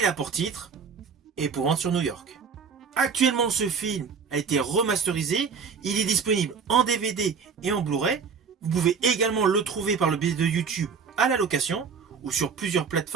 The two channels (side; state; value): left; quieter; 5.8 dB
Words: a pour titre Épouvante sur New York. Actuellement, ce film a été remasterisé, il est disponible en DVD et en Blu-ray. Vous pouvez également le trouver par le biais de YouTube à la location ou sur plusieurs